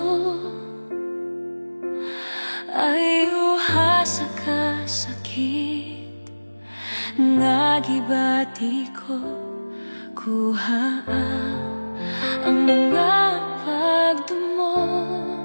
ay uha sa kasakit nga gibati ko. Kuha ang mga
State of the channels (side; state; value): both; inverted; correlation -1.00